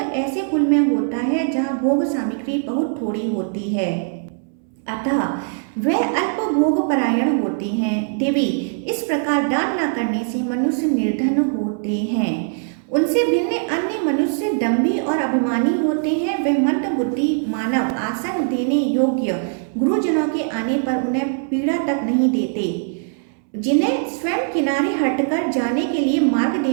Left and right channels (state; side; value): silent; left; 65 dB below the other